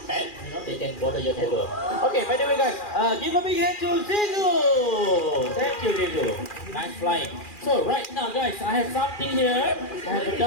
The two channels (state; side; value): late; right; 2.4 ms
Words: pet. You know, they can bother your neighbor. Okay, by the way, guys, give a big hand to Zizu. Thank you, Zizu. Nice flying. So right now, guys, I have something here. I have a